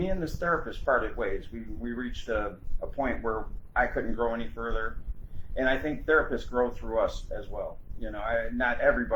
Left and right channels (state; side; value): identical; both; correlation 1.00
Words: and this therapist parted ways. We reached a point where I couldn't grow any further, and I think therapists grow through us as well. You know, not